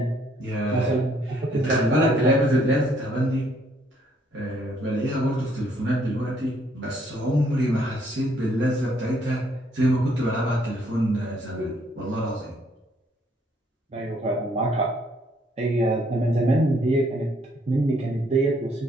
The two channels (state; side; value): normal; both; correlation 0.67